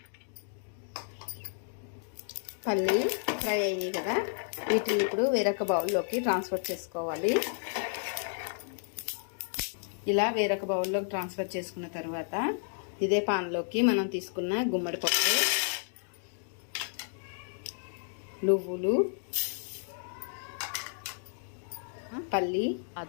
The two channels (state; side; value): silent; right; digital silence